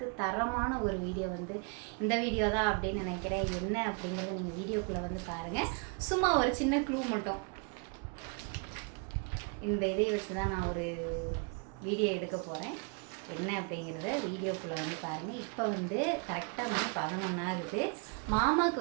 தரமான ஒரு வீடியோ இந்த வீடியோ தான் அப்படின்னு நினைக்கிறேன். என்ன அப்படிங்கிறத நீங்கள் வீடியோக்குள்ளே பாருங்கள். சும்மா ஒரு சின்ன க்ளூ மட்டும், இந்த இதை வச்சு தான் நான் ஒரு வீடியோ எடுக்க போகிறேன். என்ன அப்படிங்கிறத வீடியோக்குள்ளே பாருங்கள். இப்போ கரெக்டாக 11 ஆகுது.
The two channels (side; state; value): left; quieter; 35.7 dB